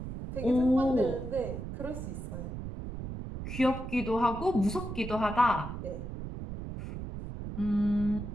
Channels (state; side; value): noise; right; rumble, 7 dB below the sound